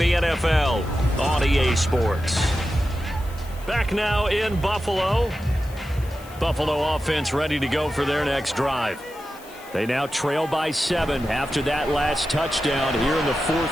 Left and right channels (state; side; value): noise; left; hiss, 22 dB below the sound